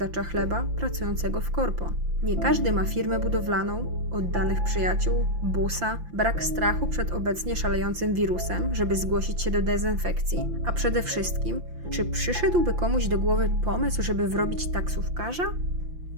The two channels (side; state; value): left; late; 5.8 ms